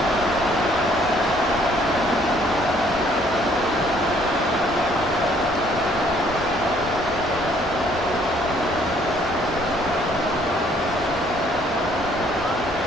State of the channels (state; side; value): normal; both; correlation 0.62